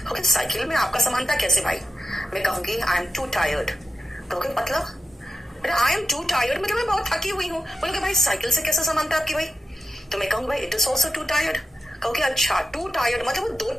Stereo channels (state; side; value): normal; both; correlation 0.90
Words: ओके साइकिल में आपका समानता कैसे भाई? मैं कहूंगी आई एम टू टायर्ड, कहोगे मतलब आई एम टू टायर्ड मतलब मैं बहुत थकी हुई हूं। बोलोगे भाई साइकिल से कैसे समानता आपकी भाई? तो मैं कहूंगी भाई it is also to tired. कहोगे अच्छा टू टायर्ड मतलब वो दो